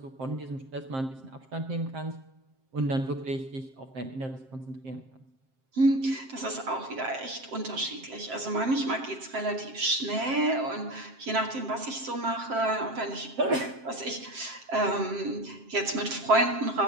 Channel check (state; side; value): late; left; 7.6 ms